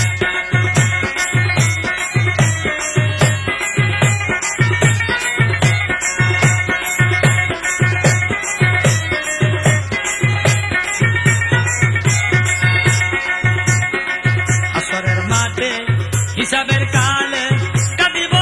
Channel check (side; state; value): both; identical; correlation 1.00